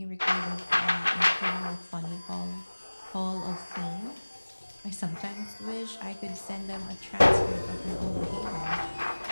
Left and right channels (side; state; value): both; inverted; correlation -1.00